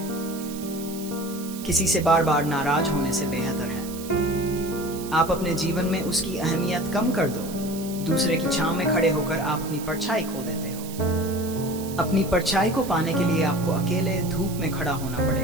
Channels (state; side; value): noise; right; hiss, 14 dB below the sound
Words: किसी से बार बार नाराज होने से बेहतर है आप अपने जीवन में उसकी अहमियत कम कर दो। दूसरे की छांव में खड़े होकर आप अपनी परछाई खो देते हो। अपनी परछाई को पाने के लिए आपको अकेले धूप में खड़ा होना